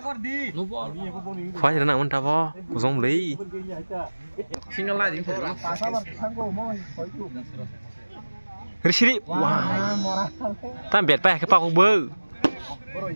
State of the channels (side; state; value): both; inverted; correlation -1.00